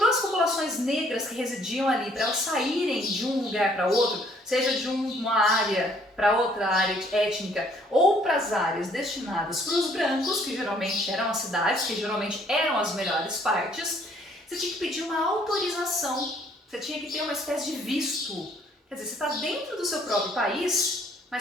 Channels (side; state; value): both; normal; correlation 0.63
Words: as populações negras que residiam ali, para elas saírem de um lugar para outro, seja de uma área para outra área étnica, ou para as áreas destinadas para os brancos, que geralmente eram as cidades, que geralmente eram as melhores partes, você tinha que pedir uma autorização, você tinha que ter uma espécie de visto. Quer dizer, você está dentro do seu próprio país,